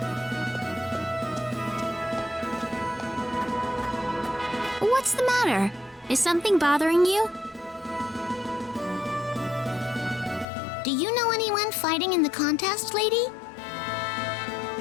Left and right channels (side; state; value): right; drops out; at 10.5 s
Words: What's the matter? Is something bothering you? Do you know anyone fighting in the contest, lady?